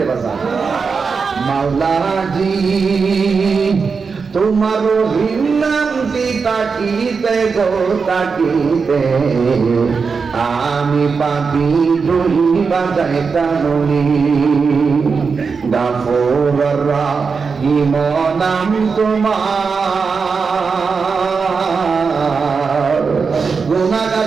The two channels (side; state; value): left; quieter; 5.2 dB